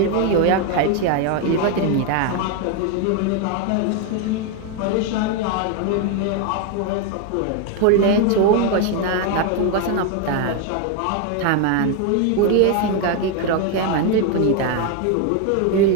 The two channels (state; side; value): different; both; correlation 0.01